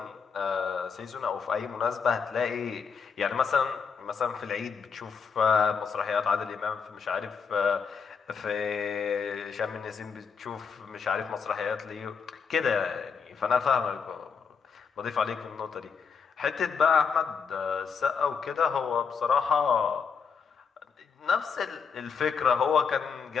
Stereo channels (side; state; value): right; quieter; 6.0 dB